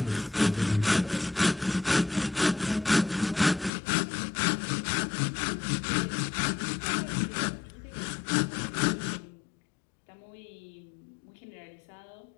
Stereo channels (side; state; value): right; drops out; at 3.7 s